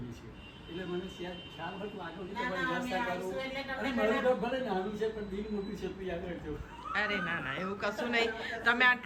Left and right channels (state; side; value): identical; both; correlation 1.00